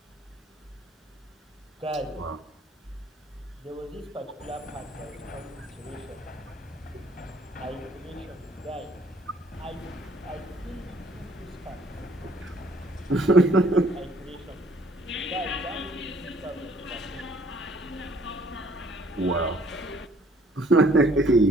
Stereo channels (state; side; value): normal; both; correlation 0.59